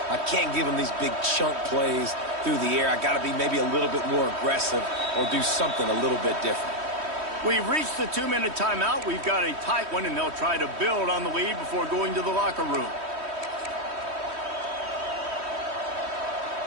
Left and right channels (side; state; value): left; late; 3.1 ms